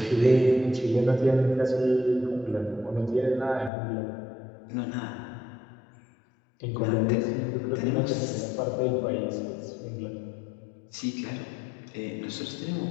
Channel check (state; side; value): drops out; right; at 3.7 s